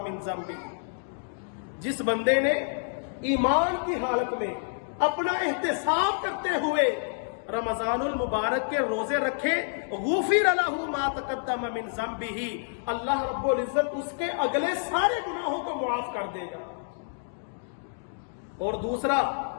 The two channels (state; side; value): silent; right; digital silence